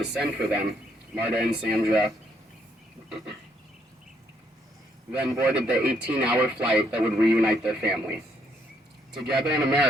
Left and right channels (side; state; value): both; normal; correlation 0.71